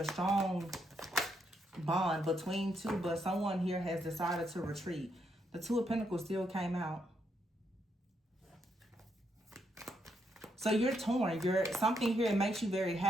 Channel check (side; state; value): both; normal; correlation 0.78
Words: strong bond between two, but someone here has decided to retreat. The Two of Pentacles still came out. So you're torn. Something here makes you very